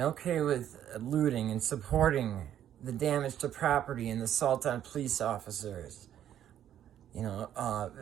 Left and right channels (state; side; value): quieter; left; 10.7 dB